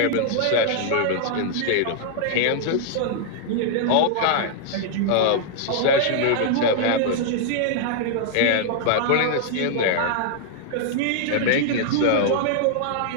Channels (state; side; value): different; both; correlation -0.01